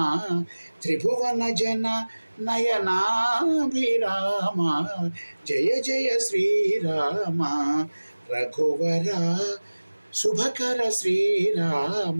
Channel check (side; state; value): both; inverted; correlation -1.00